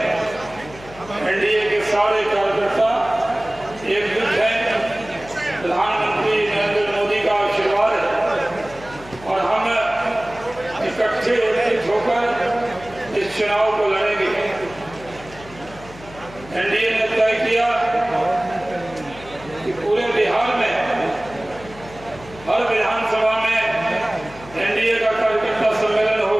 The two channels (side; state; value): left; noise; hum, 19 dB below the sound